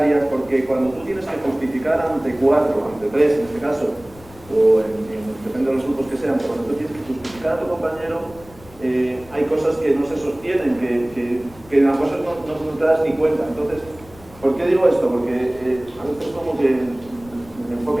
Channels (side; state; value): left; noise; rumble, 22 dB below the sound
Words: porque cuando tú tienes que justificar ante 4, ante 3 en este caso, o depende de los grupos que sean, pero cuando tú tienes que justificar a tu compañero, hay cosas que no se sostienen, que en las cosas no te das ni cuenta. Entonces, ¿por qué digo esto? Porque a veces como que el